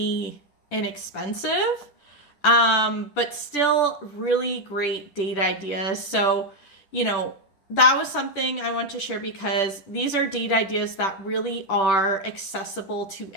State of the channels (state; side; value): late; right; 10 ms